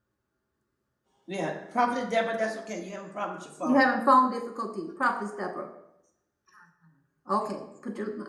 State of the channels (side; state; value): both; identical; correlation 1.00